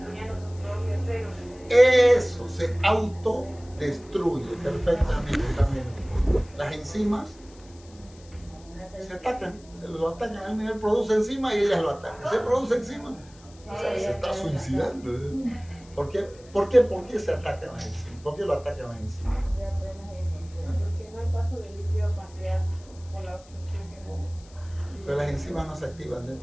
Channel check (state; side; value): noise; left; hiss, 25 dB below the sound